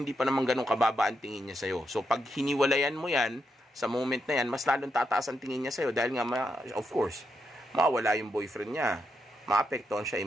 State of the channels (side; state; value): both; normal; correlation 0.82